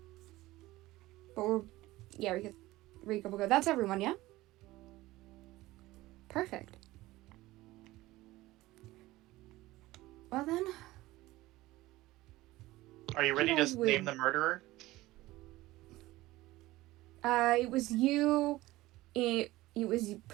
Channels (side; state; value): left; quieter; 18.1 dB